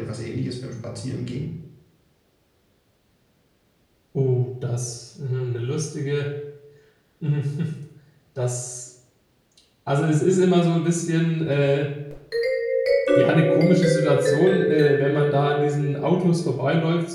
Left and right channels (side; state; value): both; identical; correlation 1.00